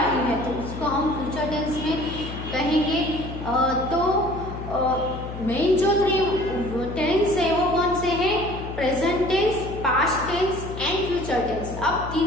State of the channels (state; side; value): noise; left; hum, 9 dB below the sound